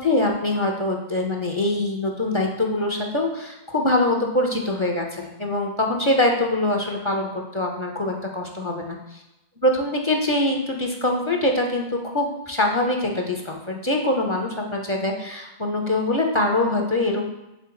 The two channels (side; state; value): left; late; 1.4 ms